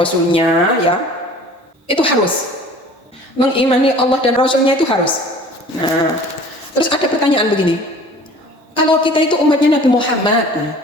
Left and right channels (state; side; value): normal; both; correlation 0.47